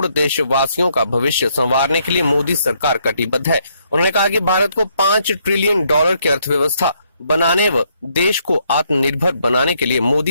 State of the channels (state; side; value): inverted; both; correlation -0.72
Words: देशवासियों का भविष्य संवारने के लिए मोदी सरकार कटिबद्ध है। उन्होंने कहा कि भारत को $5 ट्रिलियन की अर्थव्यवस्था बनाने व देश को आत्मनिर्भर बनाने के लिए